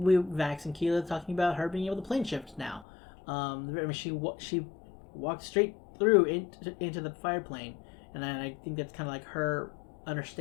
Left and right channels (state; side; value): drops out; right; at 2.9 s